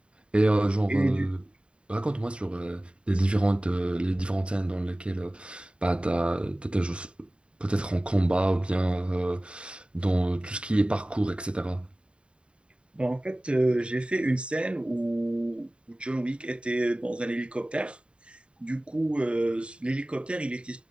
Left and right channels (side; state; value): left; late; 0.055 ms